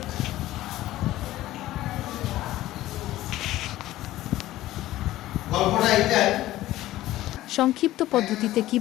গল্পটা এইটাই। সংক্ষিপ্ত পদ্ধতিতে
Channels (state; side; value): quieter; right; 15.4 dB